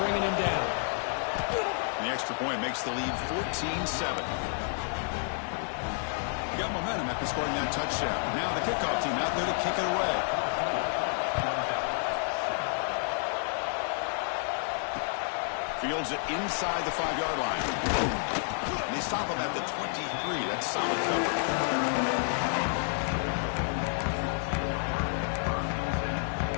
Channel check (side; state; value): right; silent; 58 dB below the other